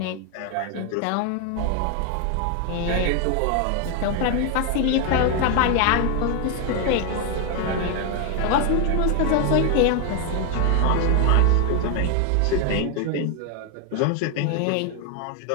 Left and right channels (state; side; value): different; both; correlation 0.01